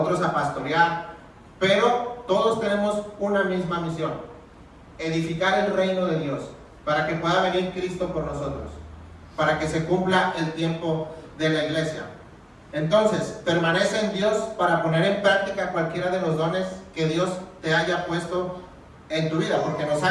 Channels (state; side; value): identical; both; correlation 1.00